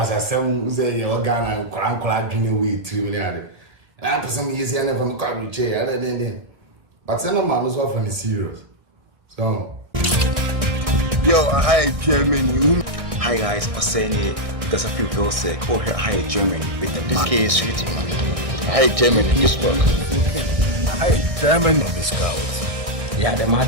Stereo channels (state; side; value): late; left; 1.6 ms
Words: some say organ and crank guinea way 3 million. I to some years and from car chair other than but some man was often serious. So yo, hi Germany. Hi guys, I'm saying it because I feel real sick. Oh, hi Germany with the this case sweet man. Hi Germany, this work. Hi Germany. Of the scouts. yeah, the